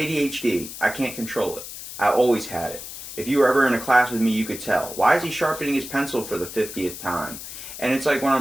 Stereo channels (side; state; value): left; noise; hiss, 11 dB below the sound